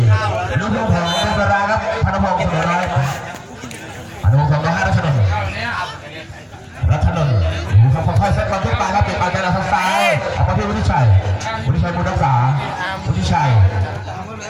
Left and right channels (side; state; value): both; identical; correlation 1.00